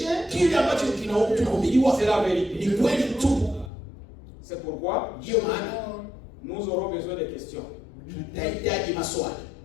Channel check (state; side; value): drops out; right; at 3.7 s